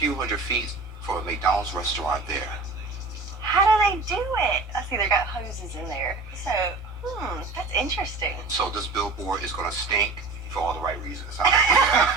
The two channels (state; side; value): quieter; left; 3.7 dB